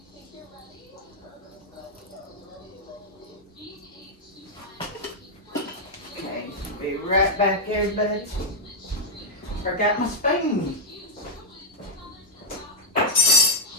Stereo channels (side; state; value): both; normal; correlation -0.03